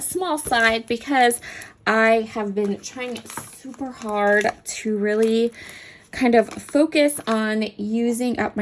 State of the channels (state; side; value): identical; both; correlation 1.00